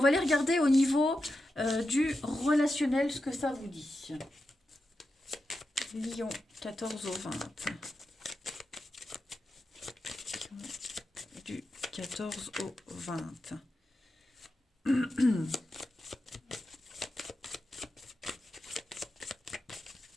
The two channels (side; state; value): both; normal; correlation 0.89